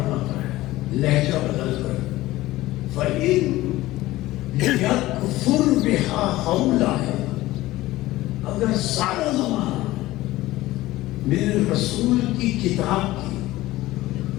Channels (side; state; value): right; quieter; 17.3 dB